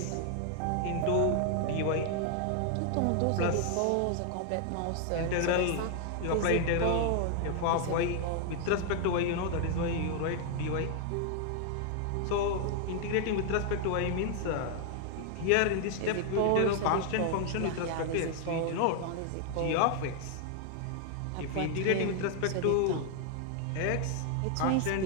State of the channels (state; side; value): different; both; correlation 0.00